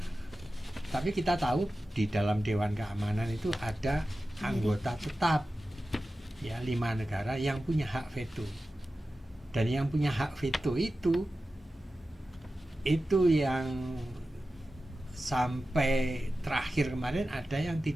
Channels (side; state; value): both; normal; correlation 0.94